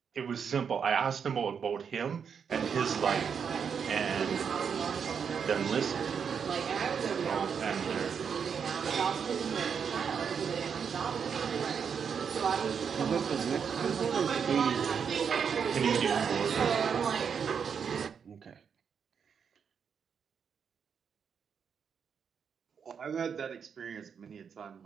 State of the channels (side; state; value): left; quieter; 6.8 dB